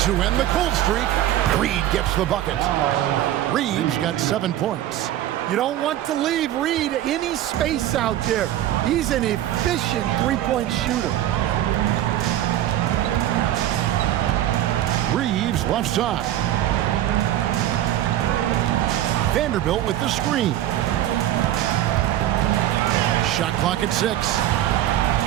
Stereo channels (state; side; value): quieter; left; 12.8 dB